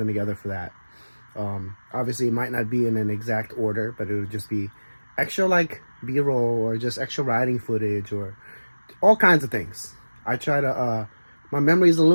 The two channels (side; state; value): both; inverted; correlation -1.00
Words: together for that. Obviously, it might not be in an exact order, but it would just be extra like B-roll or just extra riding footage or all kinds of things. I try to, my memory is a